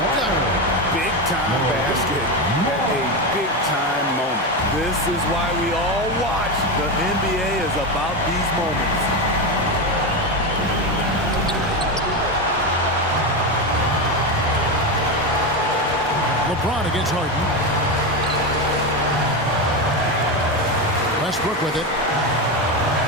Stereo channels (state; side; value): normal; both; correlation 0.14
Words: Big time basket. A big time moment. This is why we all watch. The NBA is about these moments. LeBron against Harden. Westbrook with it.